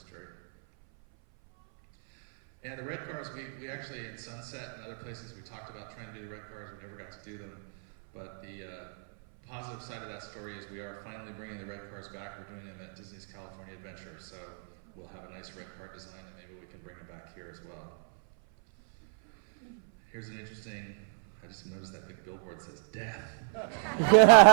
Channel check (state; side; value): silent; left; 56 dB below the other